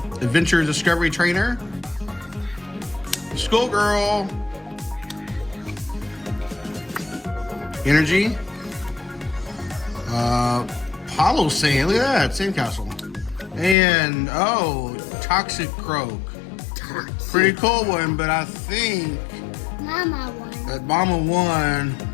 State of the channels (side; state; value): right; drops out; at 13.8 s